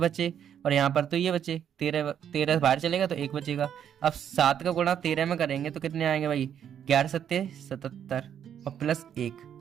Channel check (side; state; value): left; quieter; 9.1 dB